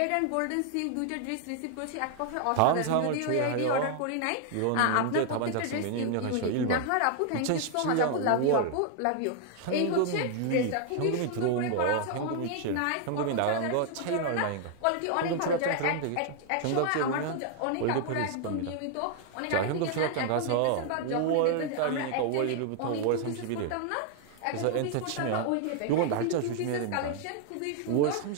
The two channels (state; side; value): different; both; correlation 0.00